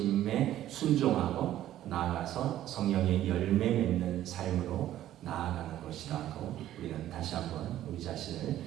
순종하고 나아가서 성령의 열매 맺는 삶으로 나아가는 것이라고 우리는 다시 한번 우리 자신을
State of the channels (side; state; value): left; quieter; 12.9 dB